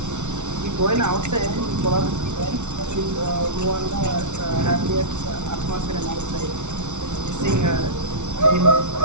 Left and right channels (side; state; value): left; late; 0.83 ms